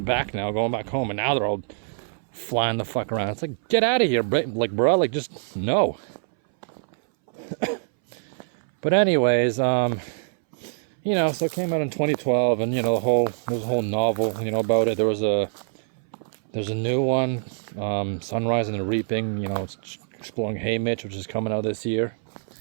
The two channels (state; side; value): silent; left; 61 dB below the other